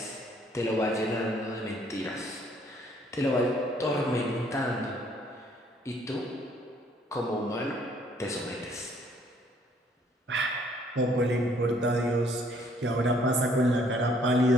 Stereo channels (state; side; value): normal; both; correlation 0.63